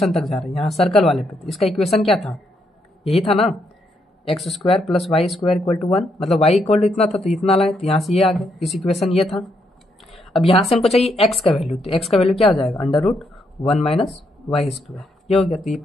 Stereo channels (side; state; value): both; normal; correlation 0.77